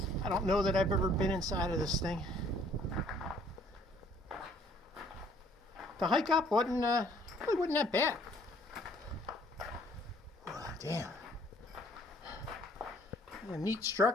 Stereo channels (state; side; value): normal; both; correlation 0.60